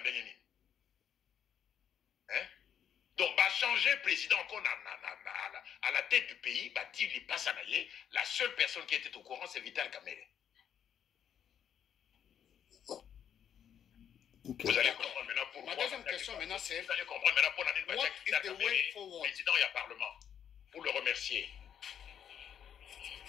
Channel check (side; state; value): right; quieter; 8.9 dB